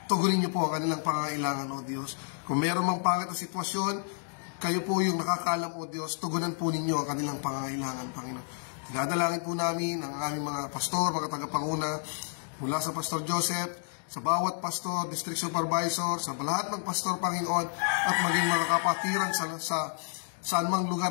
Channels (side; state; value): right; silent; 58 dB below the other